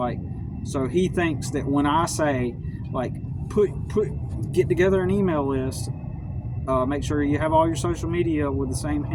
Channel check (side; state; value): both; identical; correlation 1.00